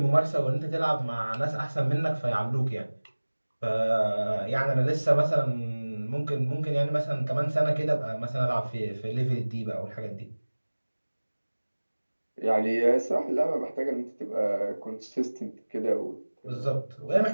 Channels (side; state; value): both; inverted; correlation -1.00